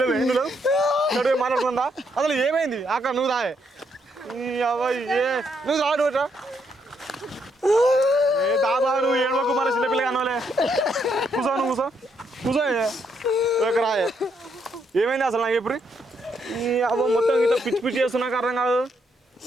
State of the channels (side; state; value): both; normal; correlation 0.75